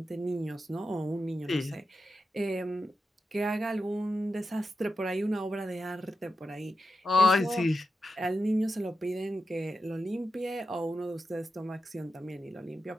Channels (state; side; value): normal; both; correlation 0.89